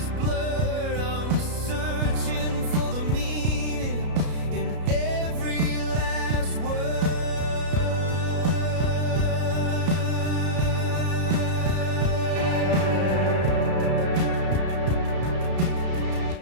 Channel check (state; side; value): late; left; 33 ms